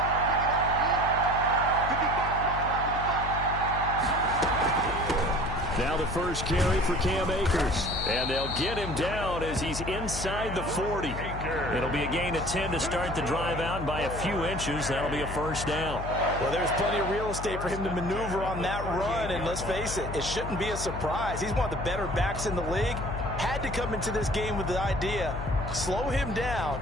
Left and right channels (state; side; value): noise; left; hum, 7 dB below the sound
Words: Now the first carry for Cam Akers. And they'll get him down as he's inside the 40. It'll be a gain of 10 to start the drive out, and by a few inches, that'll be a first down. Well, there's plenty of real estate for him to maneuver on that run, and let's face it, it shouldn't be a surprise. He's one of the better backs in the league. Had to come into this game with the idea, slow him down,